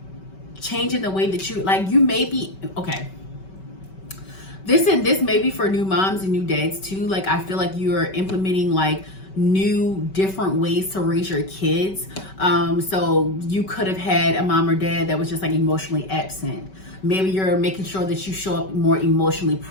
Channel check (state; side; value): late; right; 5.2 ms